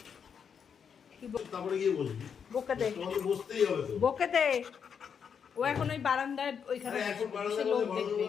তারপরে গিয়ে বসবি। বকে দে, তোমাকে বসতেই হবে তো। বকে দে। ও এখন ওই বারান্দায় ওইখানে আরে এখন বসে বারান্দায় লোক বসে দেখবে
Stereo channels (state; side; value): quieter; right; 7.0 dB